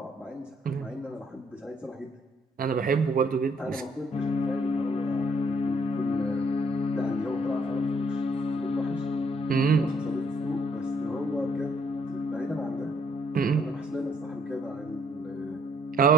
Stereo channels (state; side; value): normal; both; correlation 0.66